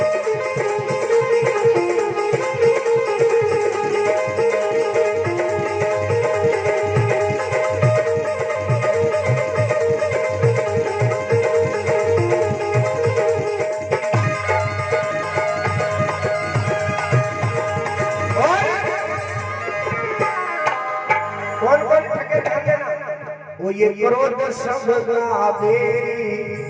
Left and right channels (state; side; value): identical; both; correlation 1.00